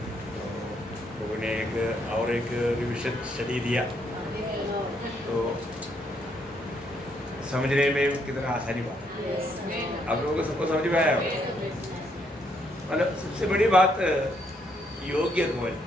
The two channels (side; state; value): both; normal; correlation 0.73